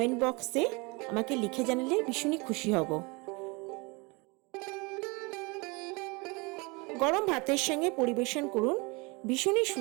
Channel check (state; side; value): quieter; left; 27.7 dB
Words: বক্সে আমাকে লিখে জানালে ভীষণই খুশি হব। গরম ভাতের সঙ্গে পরিবেশন করুন ভীষণই